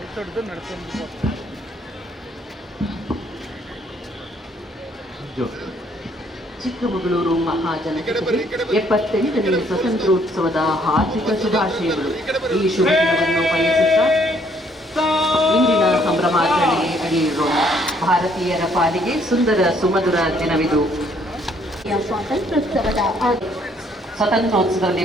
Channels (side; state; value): both; normal; correlation 0.66